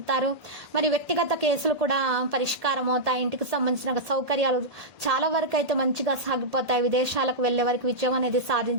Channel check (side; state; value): left; late; 1.8 ms